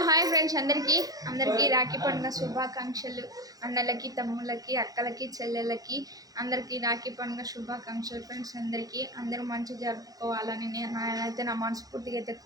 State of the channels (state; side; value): late; left; 0.18 ms